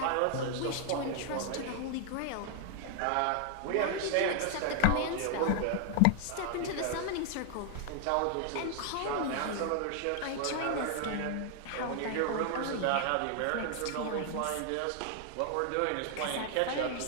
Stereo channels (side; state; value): both; different; correlation 0.00